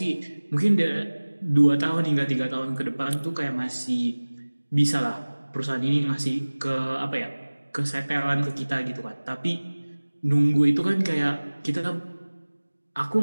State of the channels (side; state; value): both; inverted; correlation -1.00